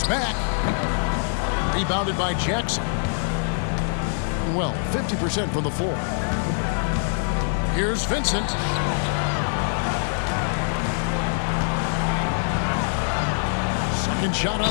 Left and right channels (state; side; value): silent; right; 63 dB below the other